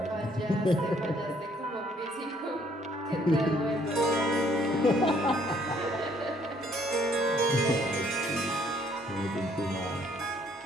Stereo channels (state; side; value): normal; both; correlation 0.64